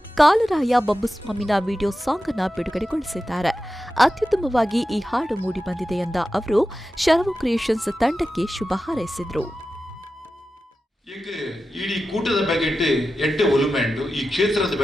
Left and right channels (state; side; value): normal; both; correlation 0.92